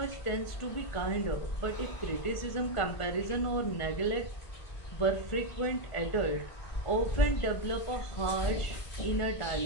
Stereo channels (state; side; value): late; right; 1.5 ms